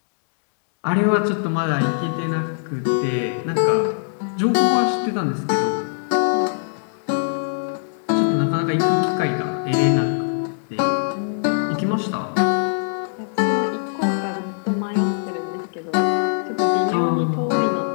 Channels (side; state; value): right; silent; digital silence